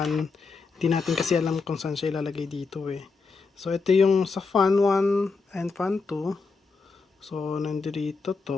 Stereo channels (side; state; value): right; quieter; 4.5 dB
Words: hindi natin kasi alam kung saan siya ilalagay dito So, ito yung sa fan 1 and fan 2. So, nandito